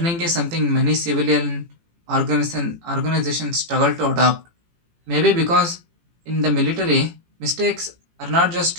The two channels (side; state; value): left; late; 18 ms